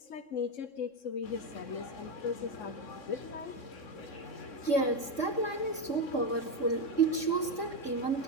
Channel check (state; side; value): late; right; 3.6 ms